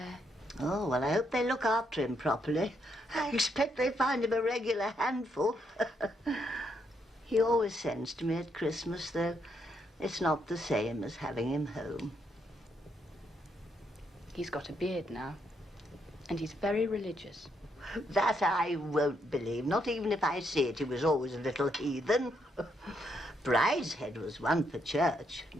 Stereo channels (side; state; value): both; normal; correlation 0.76